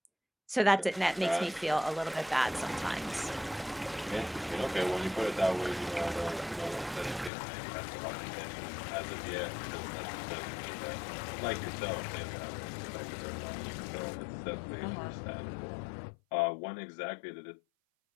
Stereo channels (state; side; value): drops out; right; at 7.3 s